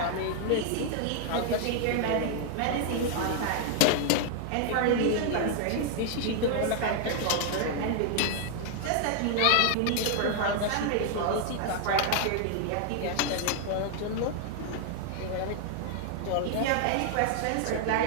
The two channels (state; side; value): different; both; correlation 0.00